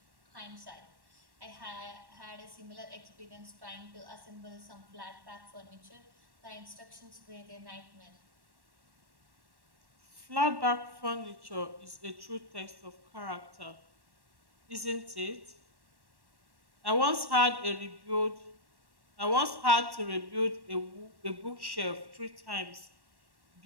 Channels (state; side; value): late; left; 1.1 ms